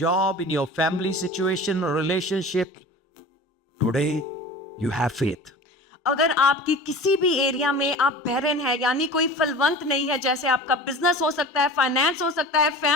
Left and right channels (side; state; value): both; normal; correlation 0.37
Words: in your family situation or relationship, today you have faith. अगर आपकी किसी भी एरिया में आप बैरन है यानी कोई फलवंत नहीं है, जैसे आपका बिजनेस हो सकता है, फाइनेंस हो सकता है,